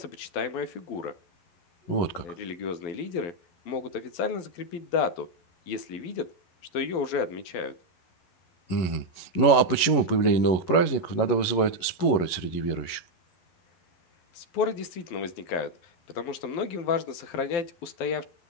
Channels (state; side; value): late; right; 11 ms